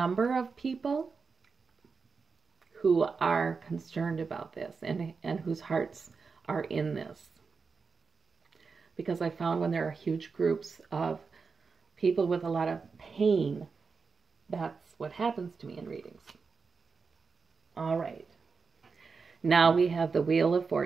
of people who are concerned about this and whose hearts are in this. Because I found when there are huge groups of people with a lot of pain, that's what happens to me in readings. All right. Now we have the Wheel of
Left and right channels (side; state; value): left; quieter; 5.0 dB